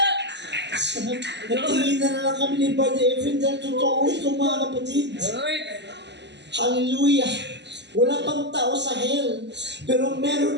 Nagtingin na lang kami ni Brother Efren dahil totoo ito, mga kapatid. Lord. Hallelujah! Wala pang tao sa hell, pero meron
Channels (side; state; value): left; late; 0.51 ms